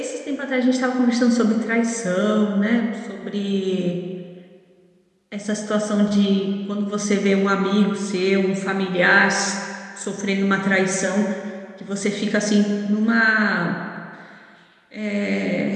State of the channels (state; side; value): identical; both; correlation 1.00